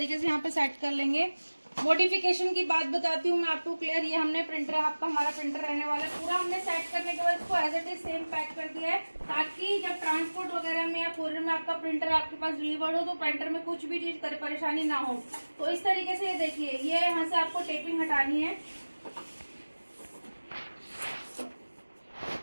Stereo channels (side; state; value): both; inverted; correlation -1.00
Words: से यहाँ पे सेट कर लेंगे। मॉडिफिकेशन की बात बताती हूँ मैं आपको क्लियर। ये हमने प्रिंटर, आपका हमारा प्रिंटर रहने वाला है, पूरा हमने सेट करने के बाद इसको as it is same pack कर दिया है, ताकि जब ट्रांसपोर्ट वगैरह में या कोरियर में आपका प्रिंटर आपके पास डिलीवर्ड हो तो प्रिंटर में कुछ भी चीज परेशानी ना हो। तो इस तरीके से ये देखिए, ये यहाँ से आपको टेपिंग हटानी है।